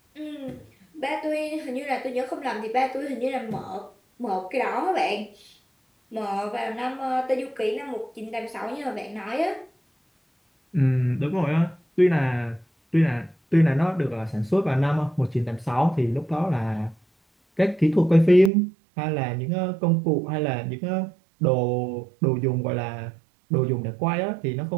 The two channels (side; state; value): left; drops out; at 18.5 s